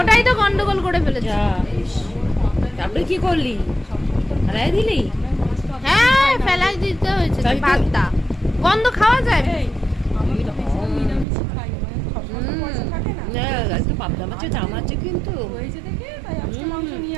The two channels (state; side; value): drops out; left; at 11.2 s